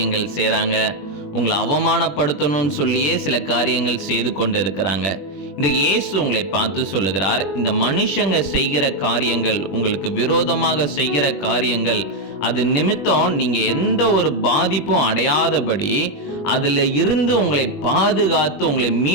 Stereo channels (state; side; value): late; right; 21 ms